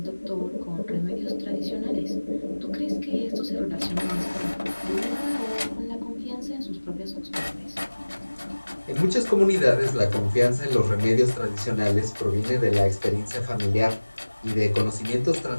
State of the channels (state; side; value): inverted; both; correlation -1.00